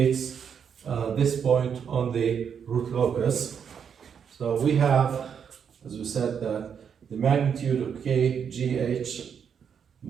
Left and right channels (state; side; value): quieter; left; 7.4 dB